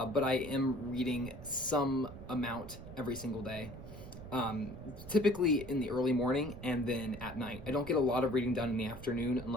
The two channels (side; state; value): right; noise; rumble, 12 dB below the sound